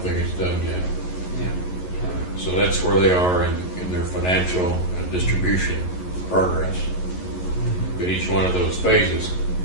it's done yet. Yeah. So that's where they are in their financial and distribution progress. But each one of those phases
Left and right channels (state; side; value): late; right; 11 ms